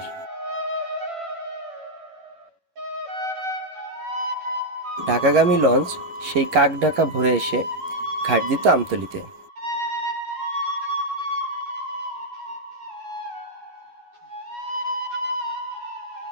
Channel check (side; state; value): left; late; 11 ms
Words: ঢাকাগামী লঞ্চ সেই কাক ঢাকা ভোরে এসে ঘাট দিত আমতলীতে।